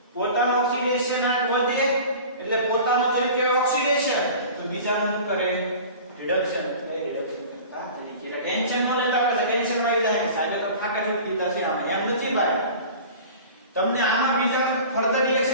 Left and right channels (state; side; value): inverted; both; correlation -0.39